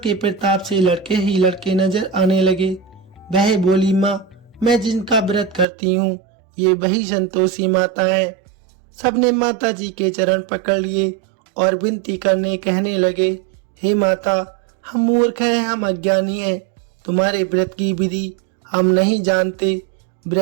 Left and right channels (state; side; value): drops out; left; at 5.7 s